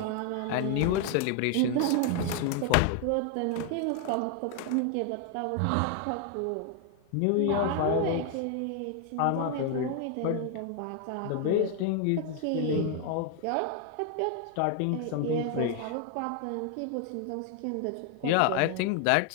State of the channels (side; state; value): both; different; correlation 0.00